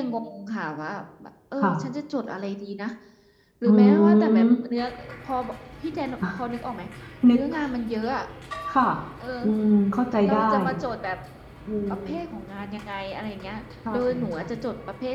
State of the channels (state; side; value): identical; both; correlation 1.00